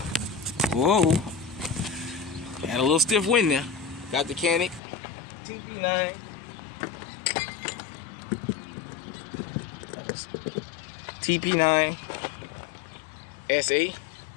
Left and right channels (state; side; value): drops out; right; at 4.8 s